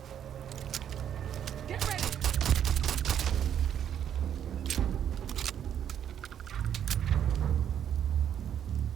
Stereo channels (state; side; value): quieter; left; 9.4 dB